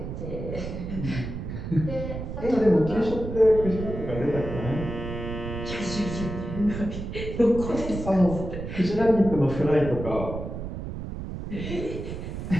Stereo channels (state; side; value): noise; right; rumble, 7 dB below the sound